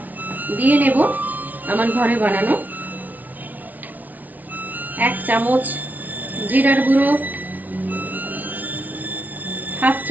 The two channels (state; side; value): late; left; 0.077 ms